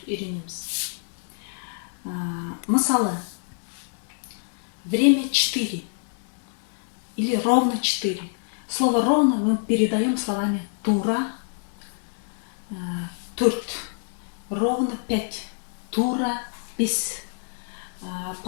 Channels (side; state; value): right; silent; digital silence